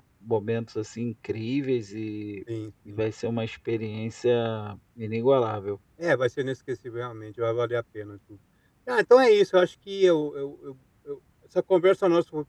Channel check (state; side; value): identical; both; correlation 1.00